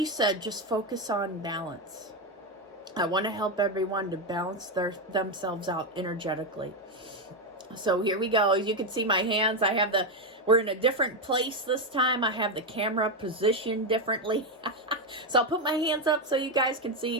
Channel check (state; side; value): normal; both; correlation 0.08